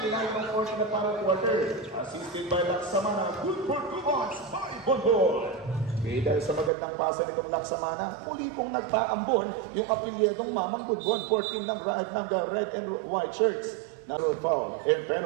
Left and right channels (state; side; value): drops out; left; at 6.7 s